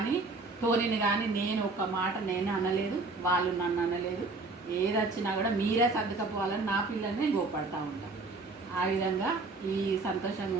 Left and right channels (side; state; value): left; quieter; 3.5 dB